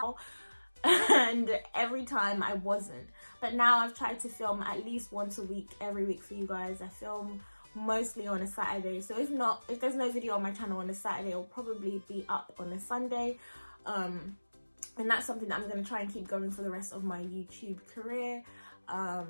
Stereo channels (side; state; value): both; inverted; correlation -1.00